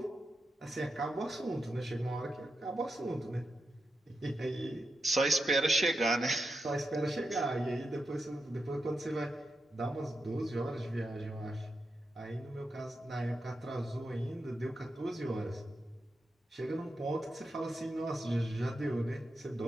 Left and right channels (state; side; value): normal; both; correlation 0.87